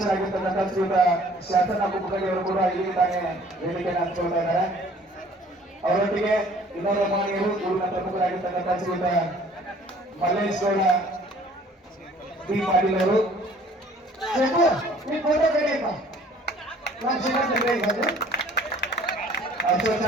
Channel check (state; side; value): normal; both; correlation 0.54